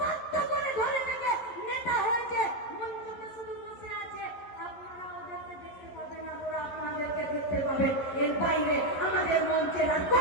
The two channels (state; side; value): late; right; 11 ms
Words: করে ধরে থেকে নেতা হয়েছে। মঞ্চে শুধু বসে আছে, আপনারা ওদেরকে দেখতে পাবেন আর ওরা আপনাদেরকে দেখতে পাবেন। এর বাইরে আমাদের মঞ্চের আর